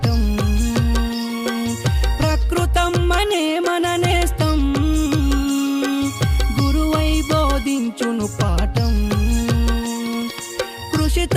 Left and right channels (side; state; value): both; identical; correlation 1.00